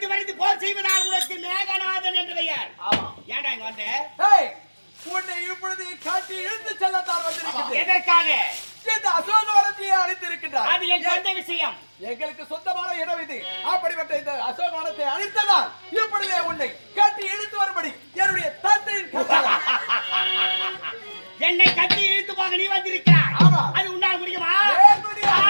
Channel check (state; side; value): inverted; both; correlation -1.00